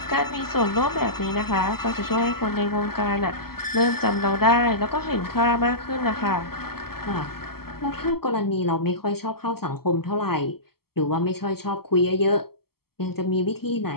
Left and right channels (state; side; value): late; right; 0.95 ms